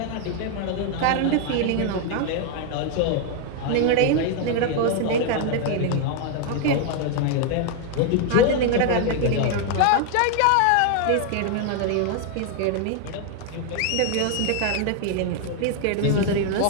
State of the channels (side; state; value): both; different; correlation 0.00